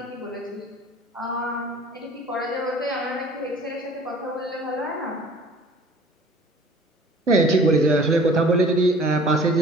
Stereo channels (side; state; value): both; normal; correlation 0.49